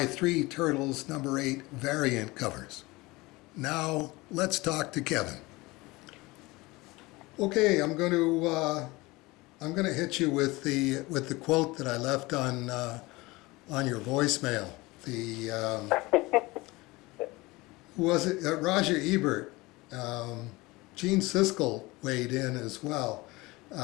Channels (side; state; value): right; quieter; 22.0 dB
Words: 3 Turtles number 8 variant covers. Now let's talk to Kevin. Okay, I'm going to hit you with the quote that I left on your voicemail. The who was it? Roger Ebert. Gene Siskel weighed in as well.